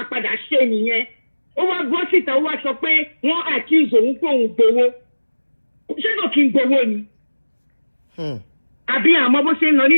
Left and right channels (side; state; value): both; inverted; correlation -1.00